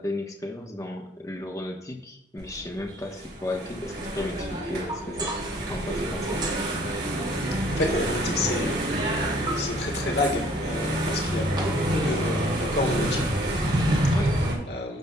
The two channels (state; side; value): normal; both; correlation 0.59